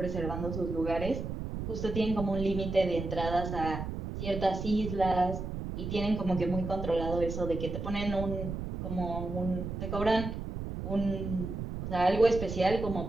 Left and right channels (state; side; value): noise; right; rumble, 5 dB below the sound